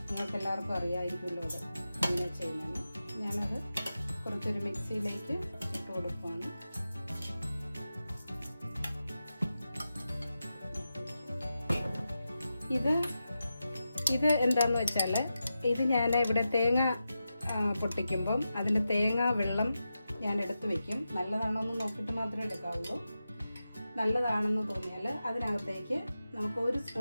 നിങ്ങൾക്ക് എല്ലാവർക്കും അറിയാമായിരിക്കുമല്ലോ അത് എങ്ങനെ ചെയ്യുന്നതെന്ന്. ഞാനത് കുറച്ചൊരു മിക്സിയിലേക്ക് ഇട്ട് കൊടുക്കുകയാണ്. ഇത് എന്താണെന്ന് വെച്ചാൽ, ഇത് ഞാൻ ഇവിടെ തേങ്ങ പൊട്ടിക്കുമ്പം അതിൻ്റെ തേങ്ങ വെള്ളം ഞാൻ എടുത്ത് വയ്ക്കും. നല്ലതാണോ എന്ന് നോക്കിയിട്ട് മാത്രമേ എടുക്കാവുള്ളൂ. നല്ലതാണെന്ന് തോന്നിയാൽ അതിനകത്തേക്ക് നമുക്ക് 1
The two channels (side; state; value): both; inverted; correlation -0.90